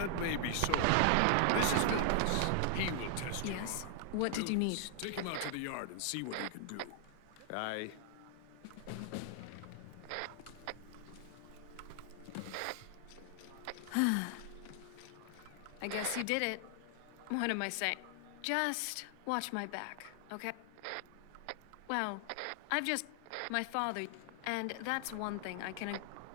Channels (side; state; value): both; different; correlation 0.00